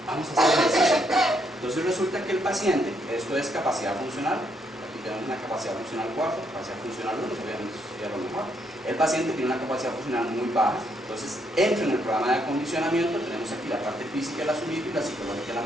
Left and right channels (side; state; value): both; normal; correlation 0.74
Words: Vamos a hacer ejercicio. Entonces resulta que el paciente, esto es capacidad funcional, aquí tenemos una capacidad funcional 4, capacidad funcional 1, obviamente sería lo mejor. El paciente tiene una capacidad funcional muy baja, entonces entra en el programa de acondicionamiento, tenemos aquí la parte física, el azulito, y la psicológica, el